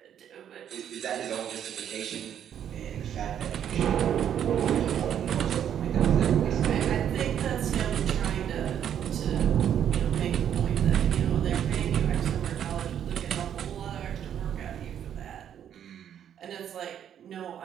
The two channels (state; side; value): quieter; left; 9.5 dB